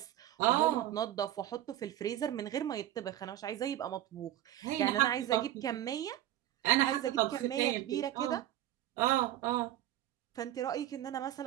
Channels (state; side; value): quieter; left; 13.2 dB